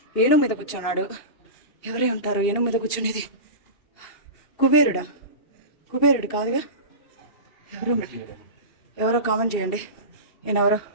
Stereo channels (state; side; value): late; right; 2.7 ms